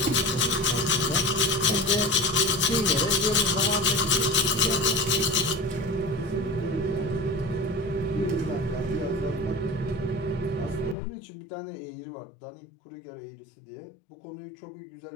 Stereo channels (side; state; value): right; drops out; at 11.0 s